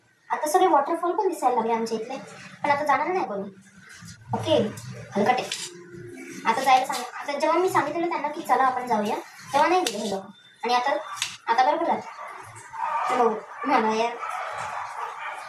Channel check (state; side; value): identical; both; correlation 1.00